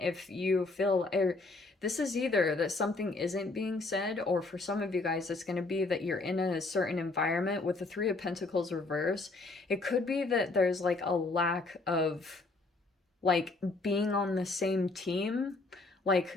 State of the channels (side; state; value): right; quieter; 3.4 dB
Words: you feel, this is either that something isn't being said, or for some of you guys it's going to be that you're in a certain environment with the Three of Pentacles reverse. It could be that there's like a lack of like being on the same team.